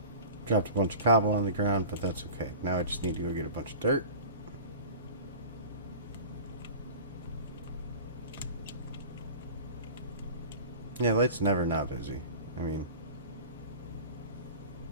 Dropped a bunch of cobble on the ground, but that's okay. Now I just need to go get a bunch of dirt. Yeah, light's never not busy. I mean,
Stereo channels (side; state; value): both; inverted; correlation -0.39